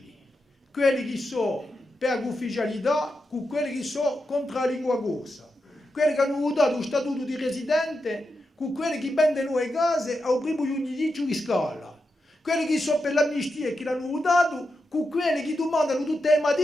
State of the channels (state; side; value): normal; both; correlation 0.87